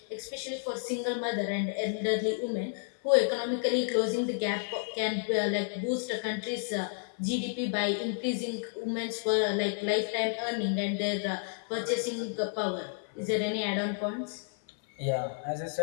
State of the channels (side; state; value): right; silent; 56 dB below the other